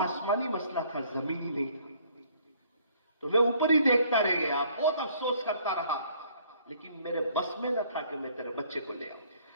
مسئلہ تھا، زمینی نہیں تھا. تو میں اوپر ہی دیکھتا رہ گیا، بہت افسوس کرتا رہا، لیکن میرے بس میں نہ تھا کہ میں تیرے بچے کو لے آؤں.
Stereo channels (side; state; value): both; inverted; correlation -0.60